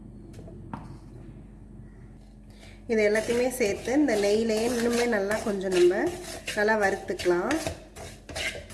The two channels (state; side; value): identical; both; correlation 1.00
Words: இது எல்லாத்தையுமே சேர்த்து இந்த நெய்யிலேயே இன்னுமே நல்லா கொஞ்சம் நம்ம நல்லா வறுத்துக்கலாம்.